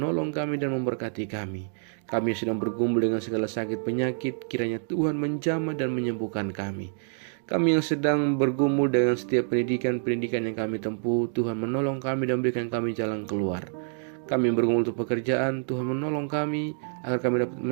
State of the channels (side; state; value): left; silent; 60 dB below the other